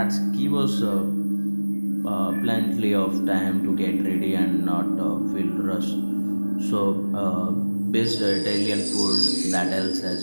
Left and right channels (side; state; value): both; inverted; correlation -1.00